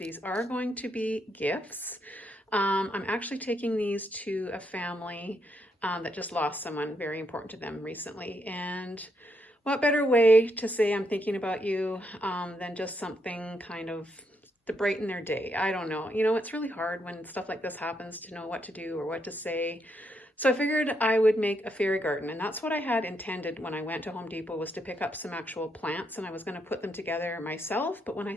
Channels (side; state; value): both; normal; correlation 0.78